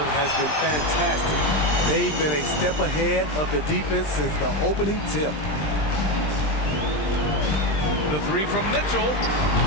has been fantastic. They've been a step ahead of the defense since the opening tip. The 3 from Mitchell,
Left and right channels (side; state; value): right; late; 20 ms